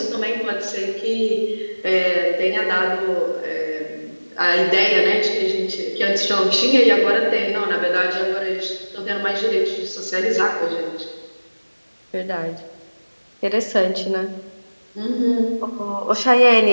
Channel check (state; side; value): inverted; both; correlation -1.00